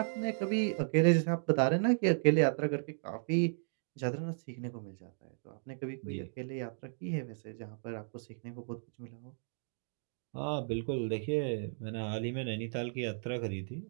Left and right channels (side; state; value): left; silent; digital silence